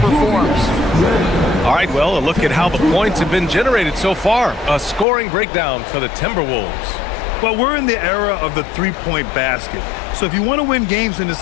All right, well, a look at how the points have been generated so far. A scoring breakdown for the Timberwolves. Well, we're in the era of the three-point basket. So if you want to win games in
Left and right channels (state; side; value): drops out; right; at 5.1 s